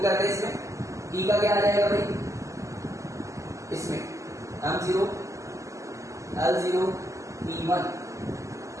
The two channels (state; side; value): late; left; 0.15 ms